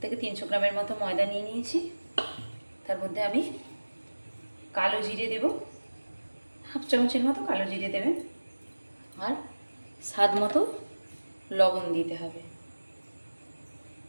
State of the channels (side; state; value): both; inverted; correlation -1.00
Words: থেকে 300 গ্রামের মতো ময়দা নিয়ে নিয়েছি। তার মধ্যে আমি কালো জিরে দেব, হাফ চামচের মতো কালো জিরে দেবেন, আর স্বাদ মতো লবণ দিতে হবে।